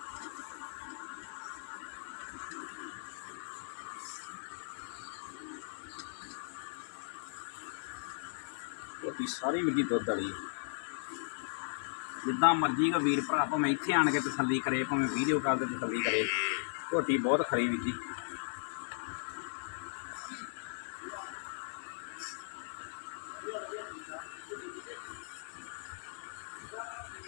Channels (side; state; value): right; silent; digital silence